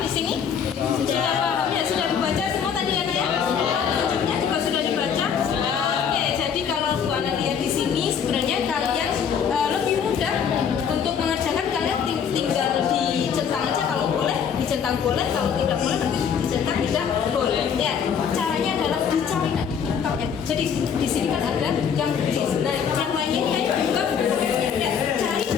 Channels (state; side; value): quieter; right; 7.4 dB